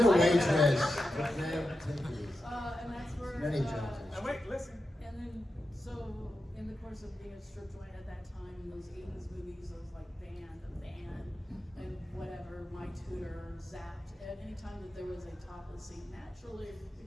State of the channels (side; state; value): both; normal; correlation 0.90